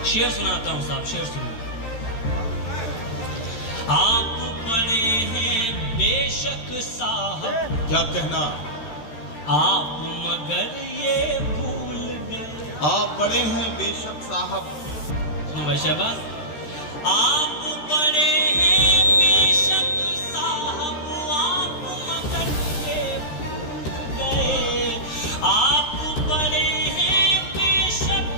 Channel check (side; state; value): right; late; 13 ms